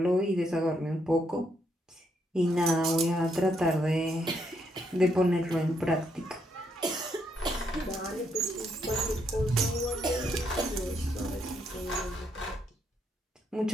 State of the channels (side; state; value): both; normal; correlation 0.76